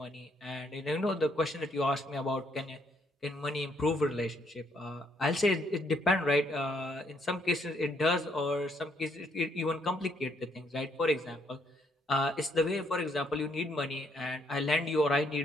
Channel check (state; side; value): normal; both; correlation 0.71